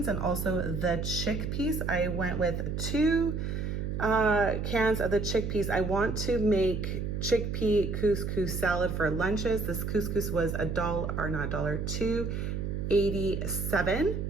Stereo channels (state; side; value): noise; right; hum, 2 dB below the sound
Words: and also the chickpeas. I went with 2 cans of the chickpeas. I want to make chickpea couscous salad for lunches. This couscous was $2.87.